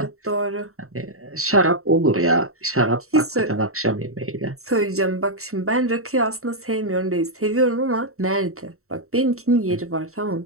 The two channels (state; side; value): late; left; 0.63 ms